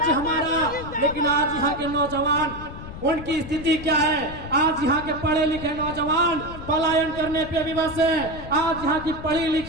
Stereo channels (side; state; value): left; noise; rumble, 12 dB below the sound